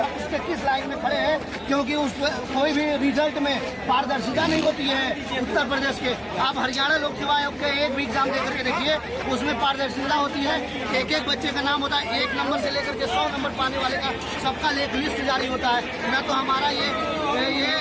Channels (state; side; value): identical; both; correlation 1.00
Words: उसके किस लाइन में खड़े हैं, क्योंकि उस कोई भी रिजल्ट में पारदर्शिता नहीं होती है। उत्तर प्रदेश के आप हरियाणा लोक सेवा आयोग के एक भी एग्जाम देकर के देखिए, उसमें पारदर्शिता होती है। एक एक बच्चे का नाम होता है, 1 नंबर से लेकर के 100 नंबर पाने वाले का सबका एक लिस्ट जारी होता है। न तो हमारा ये